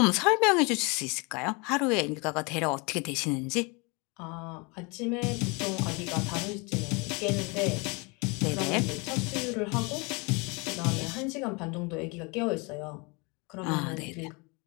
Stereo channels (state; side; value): quieter; right; 29.2 dB